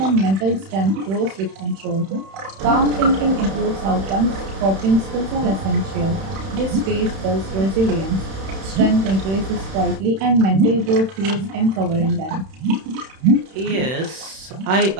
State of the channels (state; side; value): late; left; 31 ms